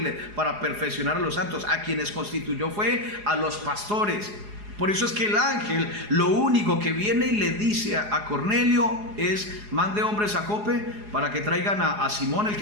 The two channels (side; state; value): left; late; 4.8 ms